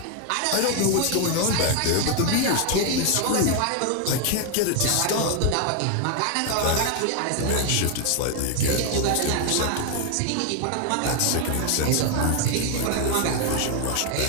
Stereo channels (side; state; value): both; different; correlation 0.01